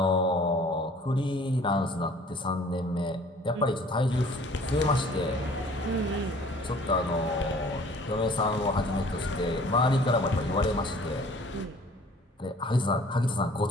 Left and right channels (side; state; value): both; normal; correlation 0.52